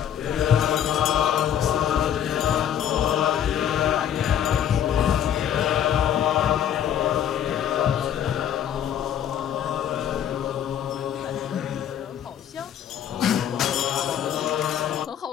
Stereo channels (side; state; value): right; quieter; 9.8 dB